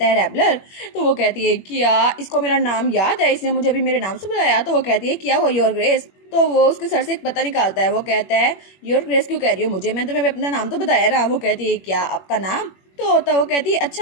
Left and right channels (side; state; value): right; late; 21 ms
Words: है रैबलर। तो वो कहती है क्या इसको मेरा नाम याद है, इसने मुझे अभी मेरे नाम से बुलाया। तो वो कहती है क्या हुआ योर ग्रेस। तो वो उसके सर से एक पता निकालता है। वो कहता है योर ग्रेस क्यों कह रही हो मुझे, मैं तुम्हें अपना नाम तो बताया ना। वो कहती है क्या आपका नाम। तो वो कहती है